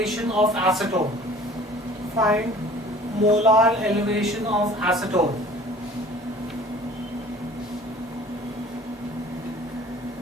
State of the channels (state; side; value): normal; both; correlation 0.48